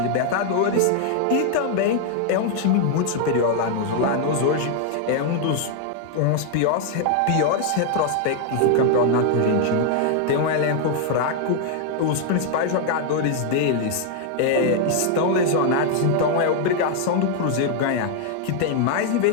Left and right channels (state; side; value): different; both; correlation 0.00